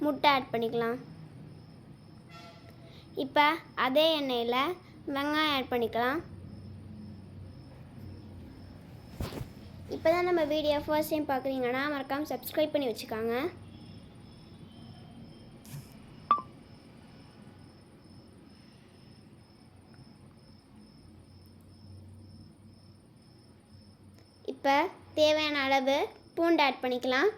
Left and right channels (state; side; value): identical; both; correlation 1.00